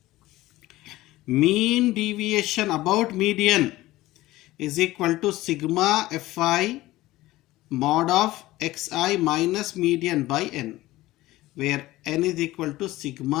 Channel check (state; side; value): quieter; right; 17.5 dB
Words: Mean deviation about median is equal to sigma fi mod of xi minus median by n, where n is equal to